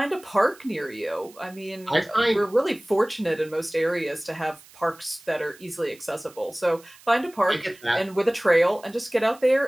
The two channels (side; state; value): right; noise; hiss, 24 dB below the sound